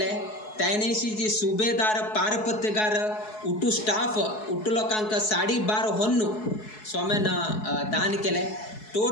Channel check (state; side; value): late; right; 4.7 ms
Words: त्या नैशीची सुबेदार पारपत्यगार उठू स्टाफ उठू लोकांक 12.5 होन्नू स्वाम्यान दान केले